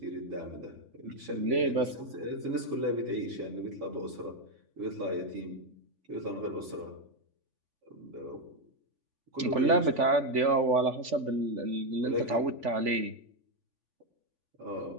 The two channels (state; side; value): late; left; 3.5 ms